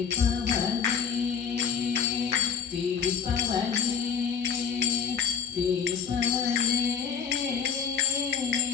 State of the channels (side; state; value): right; quieter; 6.9 dB